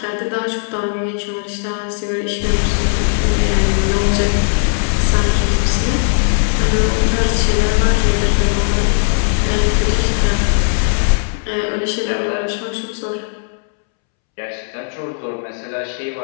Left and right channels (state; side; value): silent; right; 68 dB below the other